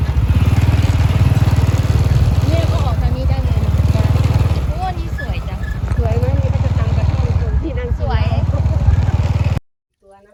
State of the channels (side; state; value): both; identical; correlation 1.00